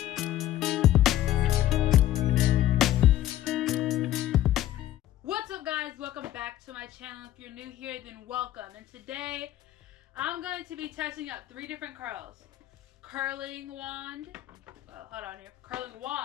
What's up, guys? Welcome back to my channel. If you're new here, then welcome. And today I'm going to be testing out 3 different curls. Curling wand. Hold on here. Curling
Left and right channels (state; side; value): quieter; right; 13.3 dB